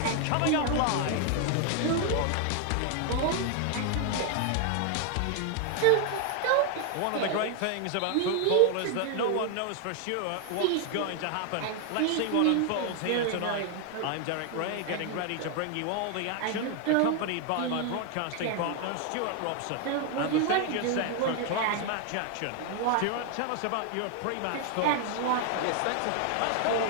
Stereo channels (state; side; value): different; both; correlation 0.00